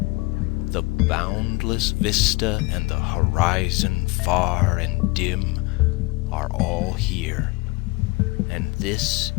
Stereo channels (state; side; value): quieter; right; 24.4 dB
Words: boundless vista and the horizon far and dim are all here, and this